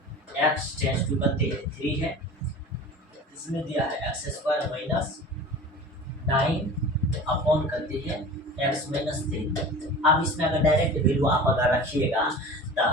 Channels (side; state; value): both; normal; correlation 0.37